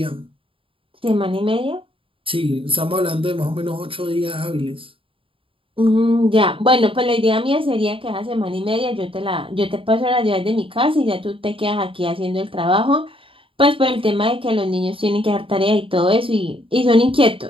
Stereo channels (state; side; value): late; left; 0.26 ms